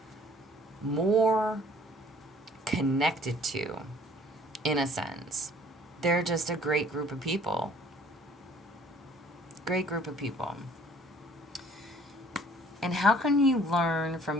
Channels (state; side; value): normal; both; correlation 0.55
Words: more connected to, in a sense. They're just a great group of people. Great group of people. And how can you learn